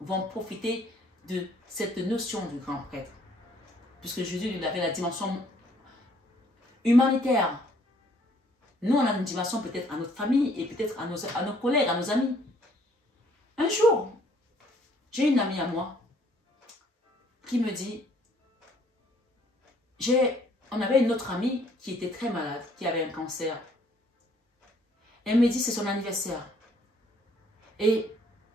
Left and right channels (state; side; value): normal; both; correlation 0.63